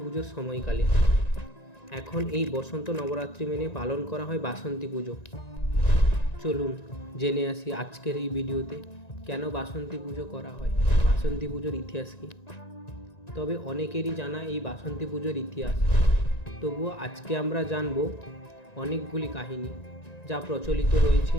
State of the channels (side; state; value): right; late; 1.9 ms